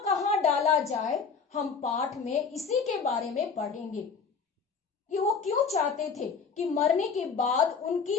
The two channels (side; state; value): right; quieter; 5.6 dB